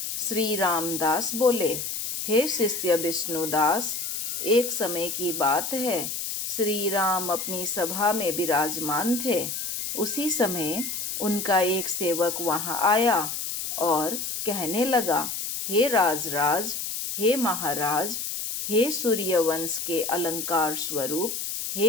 श्री रामदास बोले, हे शिष्य विष्णुदास, एक समय की बात है। श्री राम अपनी सभा में विराजमान थे। उसी समय उनका एक सेवक वहां आया और कहने लगा, हे राजराज, हे महाराज, हे सूर्यवंश के अलंकार स्वरूप,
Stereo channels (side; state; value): left; noise; hiss, 4 dB below the sound